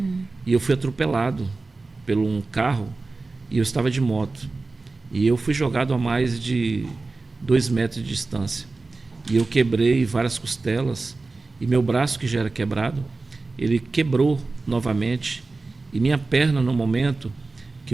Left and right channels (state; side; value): quieter; left; 3.6 dB